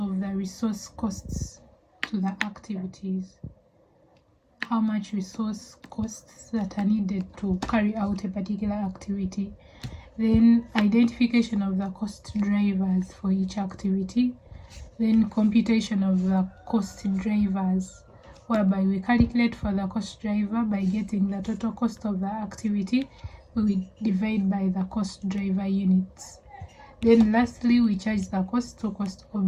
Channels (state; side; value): identical; both; correlation 1.00